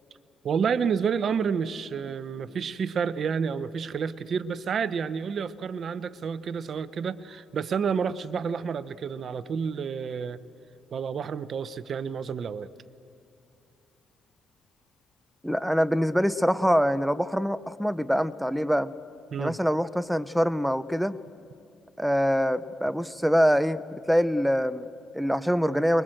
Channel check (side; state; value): both; normal; correlation 0.92